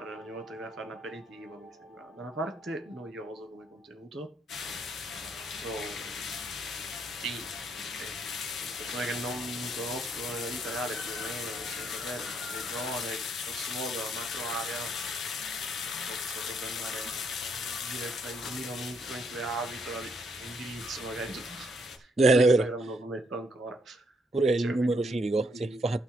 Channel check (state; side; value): normal; both; correlation 0.72